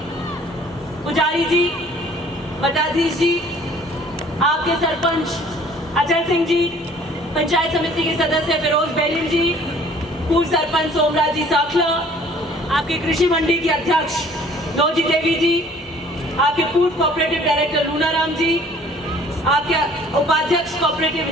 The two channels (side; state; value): both; normal; correlation 0.54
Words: जी, मठाधीश जी, आपके सरपंच अजय सिंह जी, पंचायत समिति के सदस्य फिरोज बेलिन जी, पूर्व सरपंच सोमराज जी साखला, आपके कृषि मंडी की अध्यक्ष नौजी देवी जी, आपके पूर्व कोऑपरेटिव डायरेक्टर लूनाराम जी, आपके उपाध्यक्ष कोऑपरेटिव